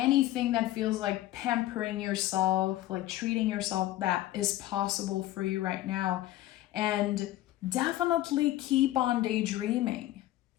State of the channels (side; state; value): right; quieter; 15.0 dB